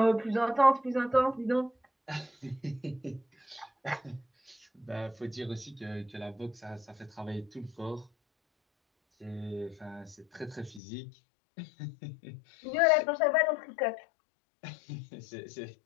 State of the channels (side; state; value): right; drops out; at 10.8 s